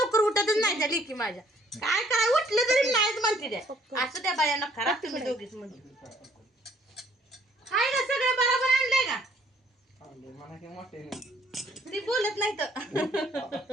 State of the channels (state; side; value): normal; both; correlation 0.62